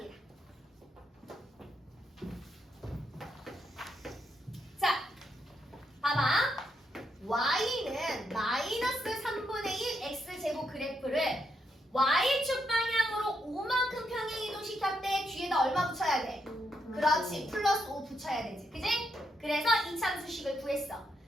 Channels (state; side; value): normal; both; correlation 0.80